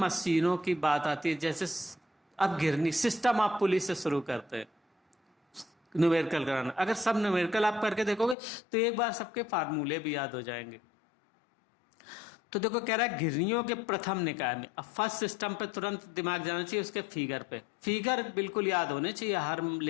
की बात आती है, जैसे अब गिरनी सिस्टम आप पुलिस से शुरू करते हैं न्यूमेरिकल कराना। अगर सब न्यूमेरिकल आप करके देखोगे तो एक बार सबके फार्मूले भी याद हो जाएंगे। तो देखो कह रहा है घिरनियों के प्रथम निकाय में, अब फर्स्ट सिस्टम पे तुरंत दिमाग जाना चाहिए, उसके फिगर पे, फिगर बिल्कुल याद होने चाहिए हर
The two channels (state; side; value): drops out; right; at 8.3 s